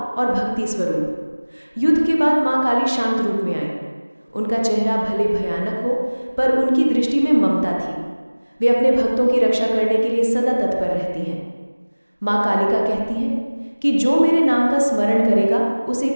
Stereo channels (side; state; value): both; inverted; correlation -1.00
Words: और भक्ति स्वरूप। युद्ध के बाद माँ काली शांत रूप में आई। उनका चेहरा भले भयानक हो, पर उनकी दृष्टि में ममता थी। वे अपने भक्तों की रक्षा करने के लिए सदा तत्पर रहती हैं। माँ कालिका कहती हैं कि जो मेरे नाम का स्मरण करेगा, उसे